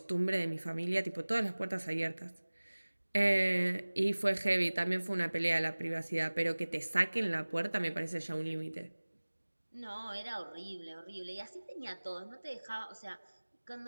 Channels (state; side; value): inverted; both; correlation -1.00